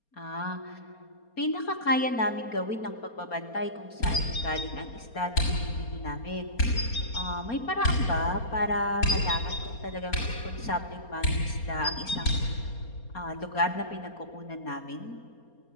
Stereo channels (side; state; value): right; late; 4.3 ms